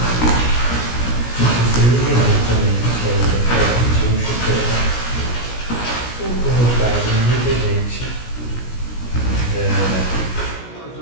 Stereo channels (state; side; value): late; right; 17 ms